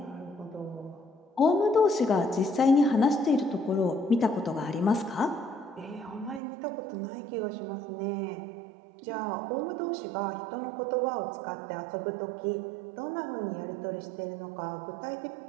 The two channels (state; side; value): drops out; left; at 6.4 s